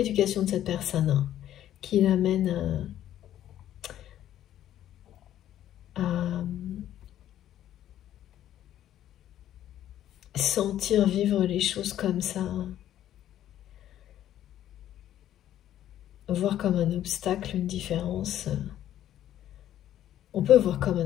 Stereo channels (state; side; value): quieter; right; 11.9 dB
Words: de cette personne hein, qui l'amène à sentir vivre les choses comme ça. Voir comme un obstacle, une différence. On peut voir comme